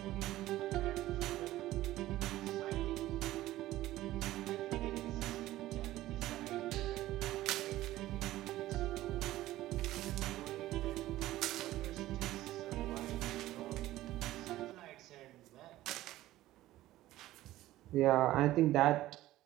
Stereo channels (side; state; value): left; quieter; 15.6 dB